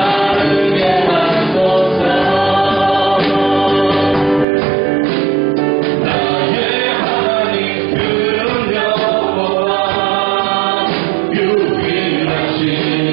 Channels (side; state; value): left; drops out; at 4.5 s